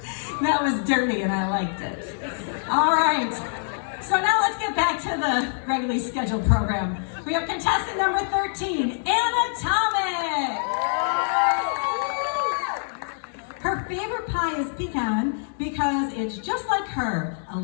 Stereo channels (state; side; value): silent; right; digital silence